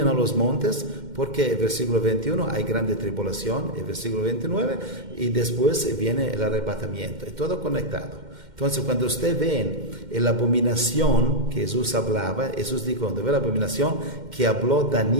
a los montes, porque el versículo 21 hay grande tribulación, el versículo 29, y después viene el arrebatamiento, es todo conectado. Entonces, cuando usted ve la abominación que Jesús hablaba, Jesús dijo, cuando ve la abominación que habló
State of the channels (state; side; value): late; left; 2.1 ms